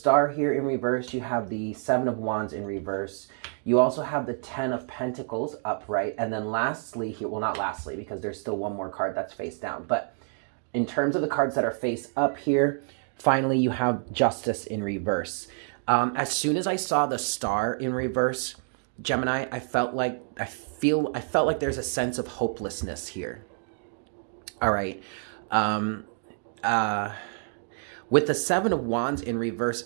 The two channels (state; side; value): silent; left; 59 dB below the other